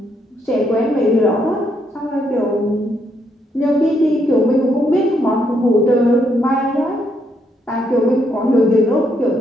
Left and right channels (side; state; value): both; normal; correlation 0.75